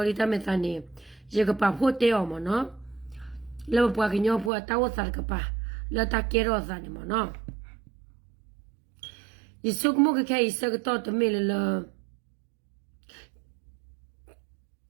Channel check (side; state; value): left; drops out; at 4.5 s